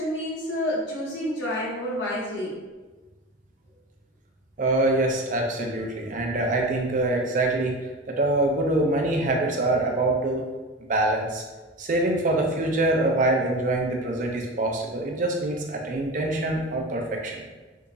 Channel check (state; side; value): normal; both; correlation 0.28